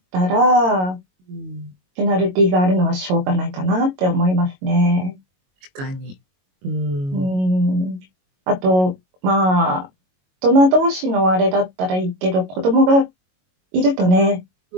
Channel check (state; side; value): late; left; 22 ms